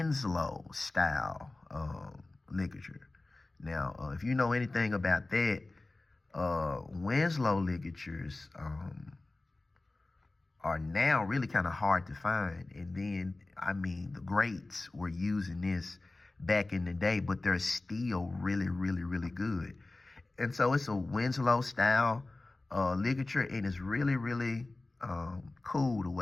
style ligature. Now, if you know anything about that, Winslow ligatures are now really kind of hard to find. And then, I mean, the greats were using this back in the day, but they're still really, really, really good. And so it's a Winslow style ligature, and it's really, really cool the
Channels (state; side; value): quieter; right; 3.0 dB